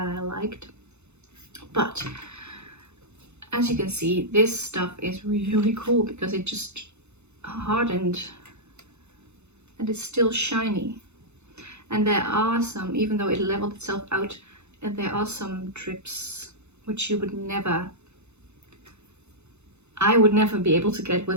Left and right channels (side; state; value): left; late; 0.81 ms